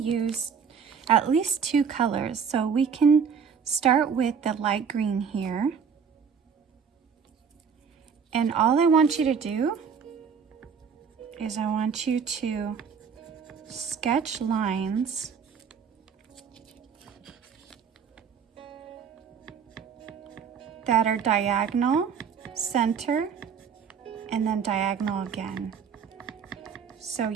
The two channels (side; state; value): left; quieter; 6.6 dB